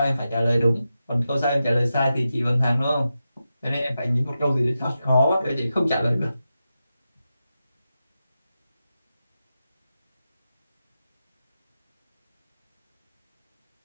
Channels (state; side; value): inverted; both; correlation -0.90